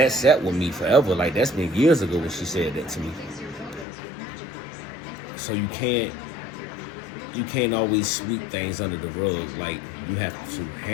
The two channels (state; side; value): drops out; right; at 3.9 s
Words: sat with me forever. Like, that's been years ago when she said that to me. So you can't always sweep things under the rug. Like, you have to